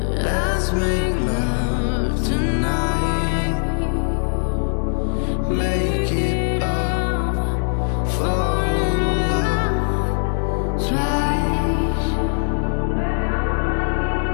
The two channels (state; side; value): silent; right; digital silence